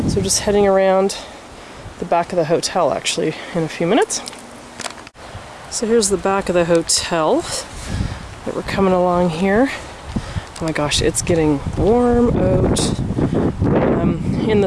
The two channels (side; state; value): both; identical; correlation 1.00